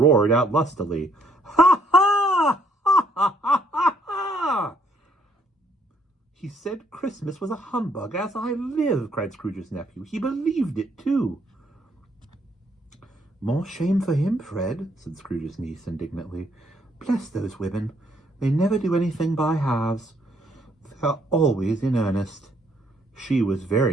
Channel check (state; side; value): normal; both; correlation 0.68